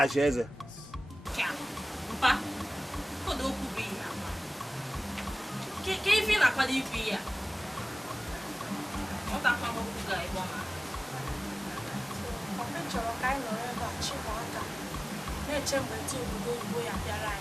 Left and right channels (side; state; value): both; normal; correlation 0.98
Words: eze. Ka ife na-akwado ikwu ya chọrọ ka anyị nọrọ ebe a chịkwa aka na-eche mgbe ndị obodo oyibo ya bịara